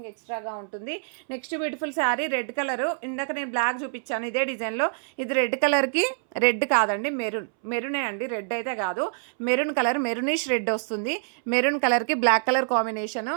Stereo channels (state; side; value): silent; left; 61 dB below the other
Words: ఎక్స్ట్రాగా ఉంటుంది. Next beautiful sari red colour. ఇందాక నేను బ్లాక్ చూపించాను ఇదే డిజైన్లో. ఇది రెడ్ కలర్కి, రెడ్ కాదండి మెరూనే అండి, రెడ్ అయితే కాదు. మెరూన్ కలర్, మెరూనిష్ రెడ్ వస్తుంది. మెరూన్ కలర్కి black colour combination,